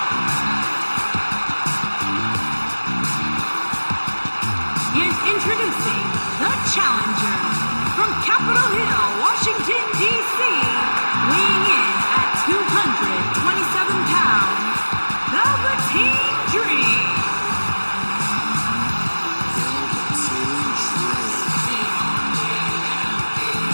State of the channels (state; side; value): inverted; both; correlation -1.00